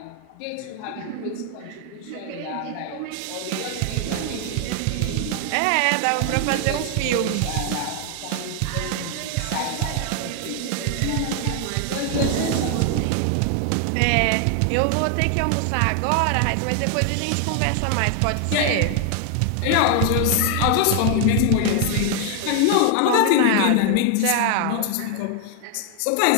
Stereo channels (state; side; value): different; both; correlation 0.00